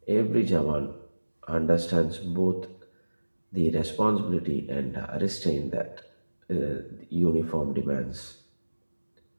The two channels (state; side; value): inverted; both; correlation -1.00